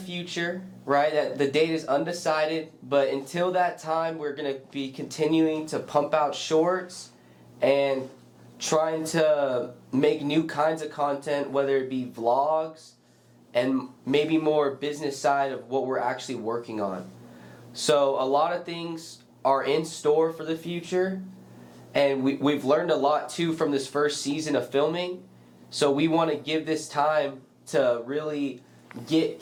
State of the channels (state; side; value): identical; both; correlation 1.00